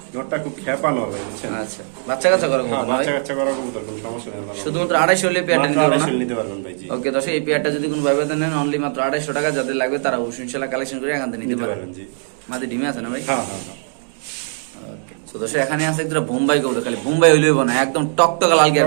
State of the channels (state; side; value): silent; left; 63 dB below the other